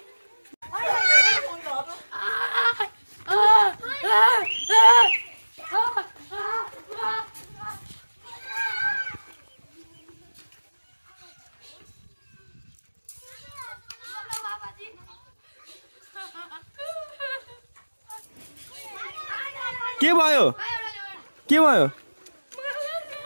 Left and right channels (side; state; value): both; inverted; correlation -1.00